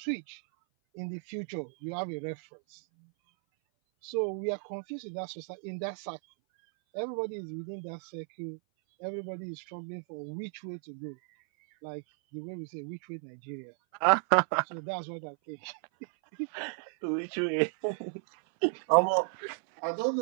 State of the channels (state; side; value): silent; left; 55 dB below the other